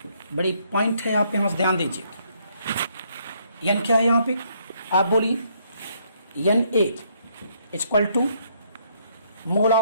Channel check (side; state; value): both; inverted; correlation -0.70